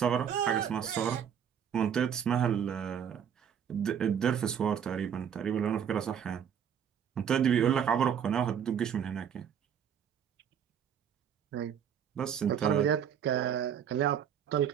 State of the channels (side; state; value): left; quieter; 8.3 dB